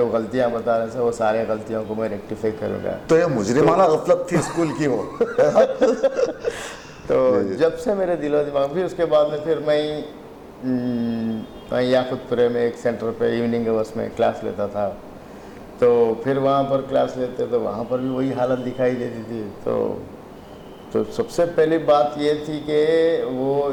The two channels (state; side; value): identical; both; correlation 1.00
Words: गलतियाँ बता रहे थे वो सारे गलतियों को मैं रेक्टिफाई करूँगा। तो ये मुजरिमाना गफलत थी स्कूल की वो तो जब से मेरे दिलो दिमाग, फिर उसके बाद में फिर मैं याकुतपुरे में एक सेंटर पे इवनिंग आवर्स में क्लास लेता था। तो फिर वहाँ पर क्लास लेते तो वहाँ पर भी वही हालत दिखाई देती थी। तो सबसे पहली बात ये थी कि वो